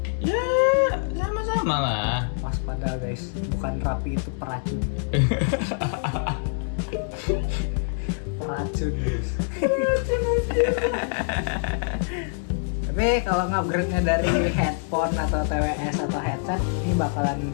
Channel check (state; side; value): silent; right; 62 dB below the other